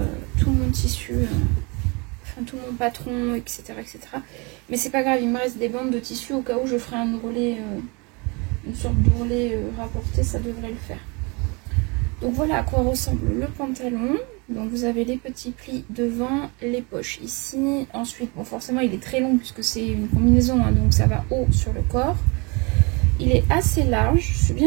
tout mon tissu, enfin tout mon patron, etc. etc. Mais c'est pas grave, il me reste des bandes de tissu au cas où je ferai un ourlet, une sorte d'ourlet rapporté, ça devrait le faire. Donc voilà à quoi ressemble le pantalon. Donc vous avez les petits plis devant, les poches ici. Ensuite, bon forcément il est très long puisque c'est une combinaison, hein, donc ça va haut sur le corps. Il est assez large, je suis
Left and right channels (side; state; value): left; quieter; 29.5 dB